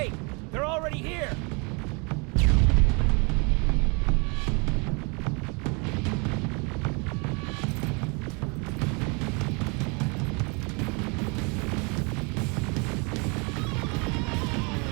They're already here.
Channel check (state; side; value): quieter; left; 31.7 dB